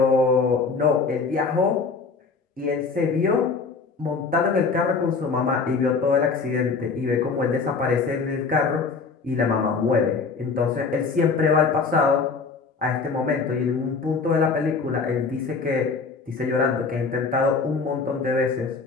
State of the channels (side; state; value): right; quieter; 4.7 dB